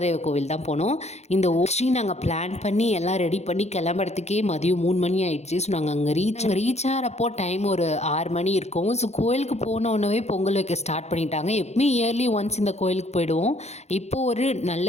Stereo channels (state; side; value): late; right; 0.32 ms